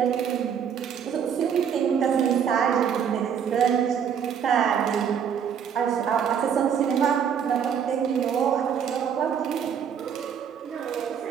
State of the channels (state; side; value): quieter; left; 7.9 dB